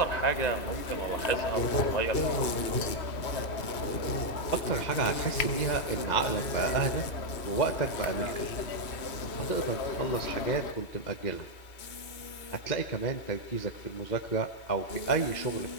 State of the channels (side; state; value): right; late; 2.8 ms